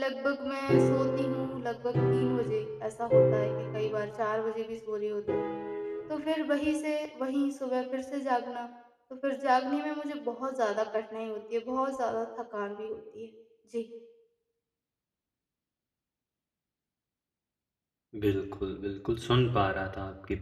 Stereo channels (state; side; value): identical; both; correlation 1.00